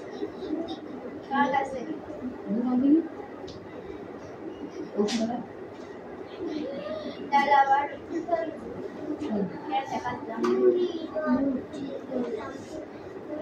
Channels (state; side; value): identical; both; correlation 1.00